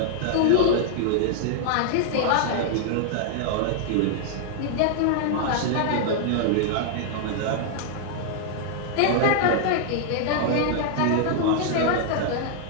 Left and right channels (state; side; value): different; both; correlation -0.01